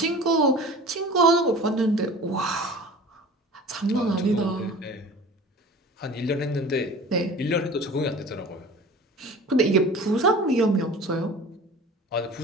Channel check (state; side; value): normal; both; correlation 0.40